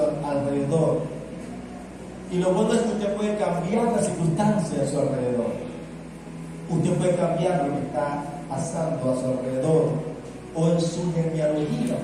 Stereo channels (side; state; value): both; identical; correlation 1.00